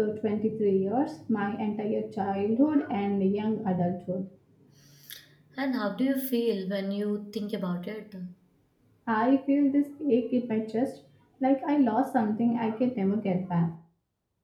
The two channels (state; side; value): identical; both; correlation 1.00